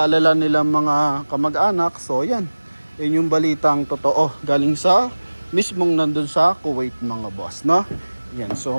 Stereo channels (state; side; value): inverted; both; correlation -1.00